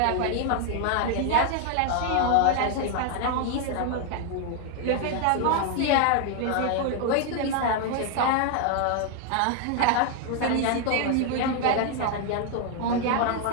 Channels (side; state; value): both; different; correlation 0.00